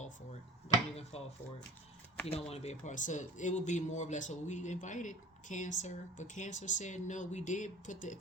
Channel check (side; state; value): both; normal; correlation 0.41